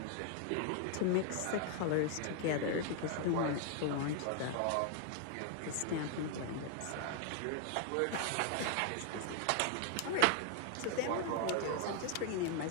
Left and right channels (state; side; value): different; both; correlation 0.00